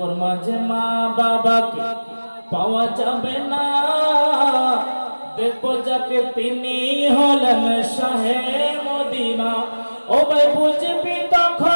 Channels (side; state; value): both; inverted; correlation -1.00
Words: মাঝে মা বাবাকে পাওয়া যাবে না, দেখবো যাকে তিনি হলেন শাহে মদিনা। ও ভাই বুঝবি